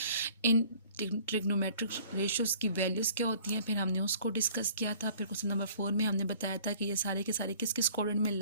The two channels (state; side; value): inverted; both; correlation -0.53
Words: इन ट्रिग्नोमेट्रिक रेशियोज़ की वैल्यूज़ क्या होती हैं, फिर हमने उसको डिस्कस किया था। फिर क्वेश्चन नंबर 4 में हमने बताया था कि ये सारे के सारे किस किस क्वाड्रेंट में